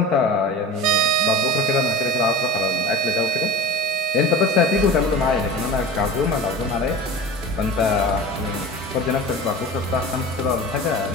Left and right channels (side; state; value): both; normal; correlation 0.33